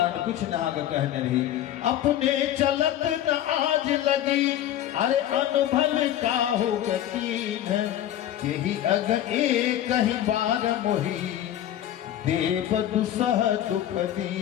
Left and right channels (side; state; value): right; quieter; 11.9 dB